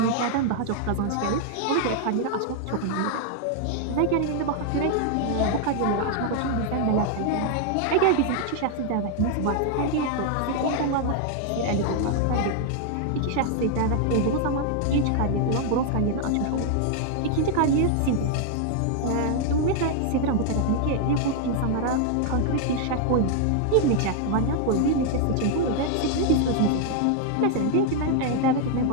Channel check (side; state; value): both; different; correlation 0.00